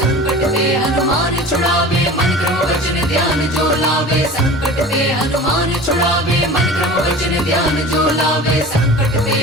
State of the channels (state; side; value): normal; both; correlation 0.38